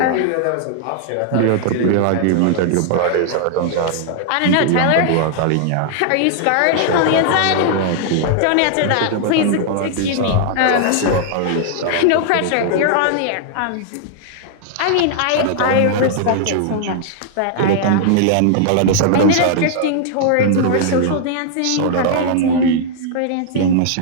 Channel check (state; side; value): different; both; correlation -0.01